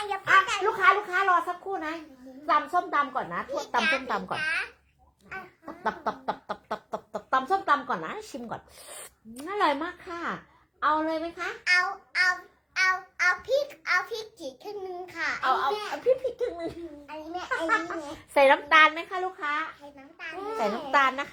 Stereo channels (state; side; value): identical; both; correlation 1.00